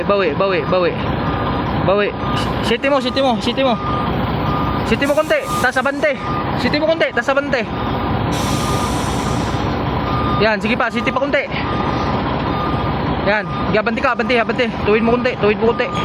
Siti mo. Siti mo konti, tas abante. Yan, sige pa, siti pa konti. Yan, abante ka. Tuwid mo konti.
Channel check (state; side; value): identical; both; correlation 1.00